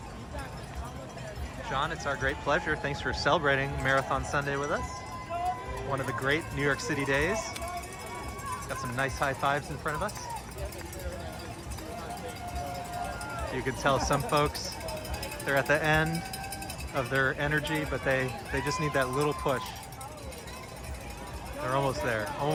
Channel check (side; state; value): both; identical; correlation 1.00